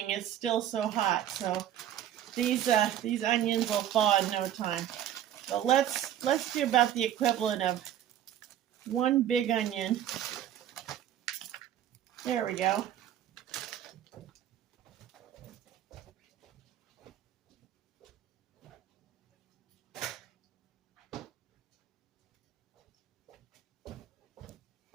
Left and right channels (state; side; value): quieter; left; 11.2 dB